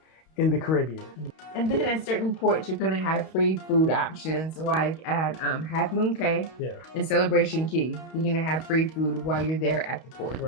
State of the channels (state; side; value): late; right; 31 ms